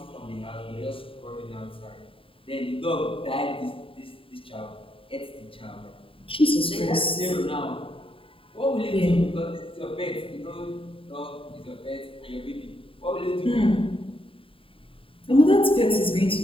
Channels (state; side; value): late; right; 0.26 ms